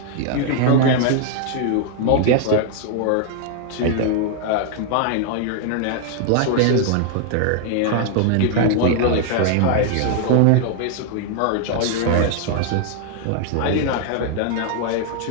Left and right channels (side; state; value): both; different; correlation 0.00